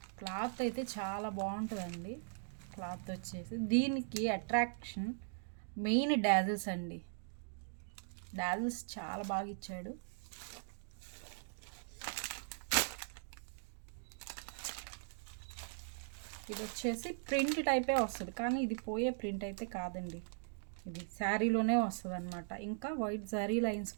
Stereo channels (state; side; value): silent; left; digital silence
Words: క్లాత్ అయితే చాలా బాగుంటుందండి. క్లాత్ వచ్చేసి దీనికి అట్రాక్షన్ మెయిన్ డాజిల్స్ అండి. డాజిల్స్ చాలా బాగా ఇచ్చాడు. ఇది వచ్చేసి ప్రింట్ టైపే వస్తుంది, కానీ ఇది పోయే ప్రింట్ అయితే కాదండి. ఇది శారీలోనే వస్తుంది అనమాట. ఇంకా వైట్ జరీ లైన్స్